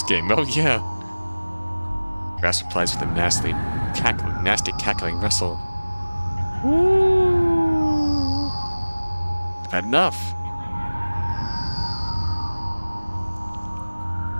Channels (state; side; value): inverted; both; correlation -1.00